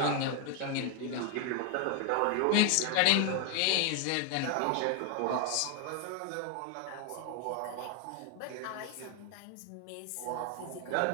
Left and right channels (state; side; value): different; both; correlation 0.00